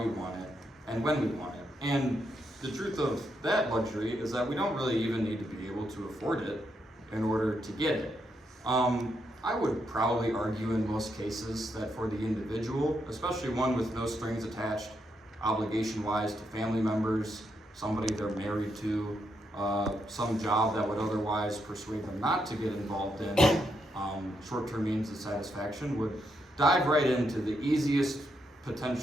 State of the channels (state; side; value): normal; both; correlation 0.80